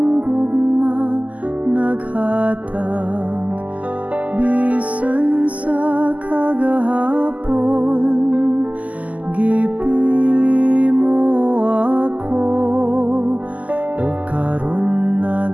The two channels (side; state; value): left; late; 0.074 ms